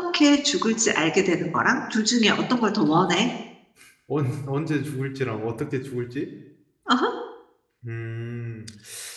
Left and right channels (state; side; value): identical; both; correlation 1.00